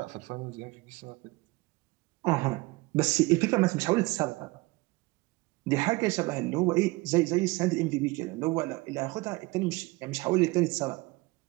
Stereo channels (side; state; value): left; quieter; 22.8 dB